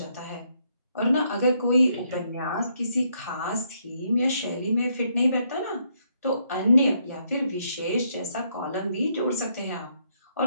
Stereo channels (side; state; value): both; inverted; correlation -0.74